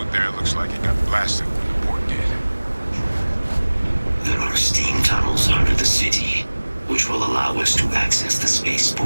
there looks like it got blasted when the port did. There are steam tunnels under the city, which will allow us to access the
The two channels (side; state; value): both; inverted; correlation -1.00